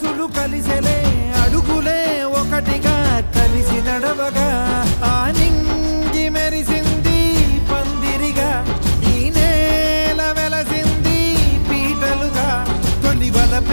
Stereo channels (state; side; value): inverted; both; correlation -1.00